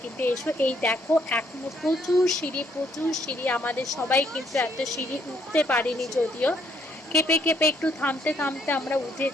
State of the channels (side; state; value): both; normal; correlation 0.69